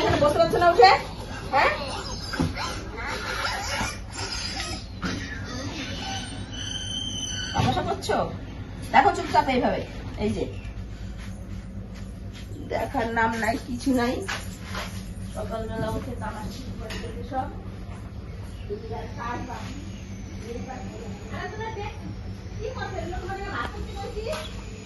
বসতে পারছো না উঠে? হ্যাঁ তামাশা করছো? দেখো চুপচাপ এইভাবে, এই যে দেখার নাম নাই কিছু নাই। সকালবেলা উঠে তামাশা করে দিতে সব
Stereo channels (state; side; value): identical; both; correlation 1.00